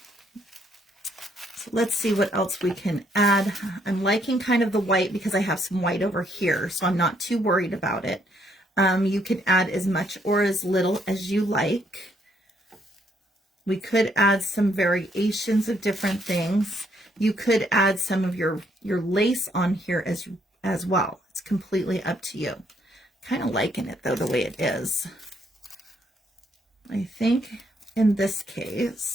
So let's see what else we can add. I'm liking kind of the white because I have some white over here, so I'm not too worried about it. You can add as much or as little as you like. We could add some variations of different things. You could add some of your lace on here as well. It's completely up to you. Kind of liking it though, the way it is. I think in this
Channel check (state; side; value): normal; both; correlation 0.71